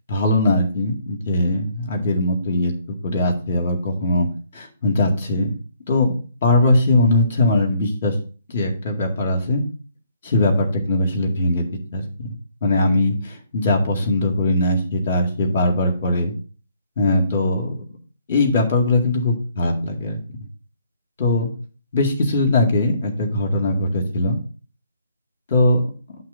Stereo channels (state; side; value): inverted; both; correlation -0.66